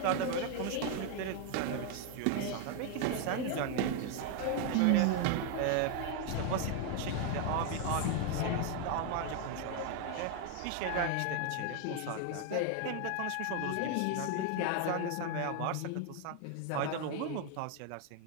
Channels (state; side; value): different; both; correlation 0.01